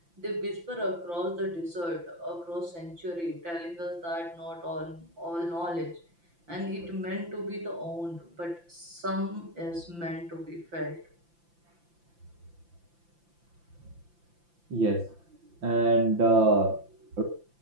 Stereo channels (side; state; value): left; late; 5.8 ms